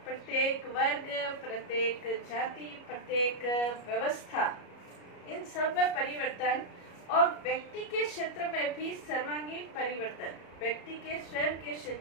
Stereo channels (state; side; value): late; right; 33 ms